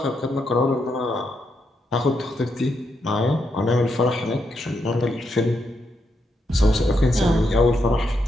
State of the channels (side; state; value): both; normal; correlation 0.81